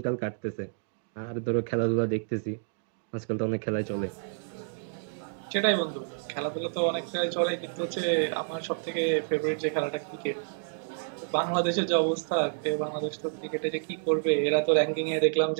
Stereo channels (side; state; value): left; silent; digital silence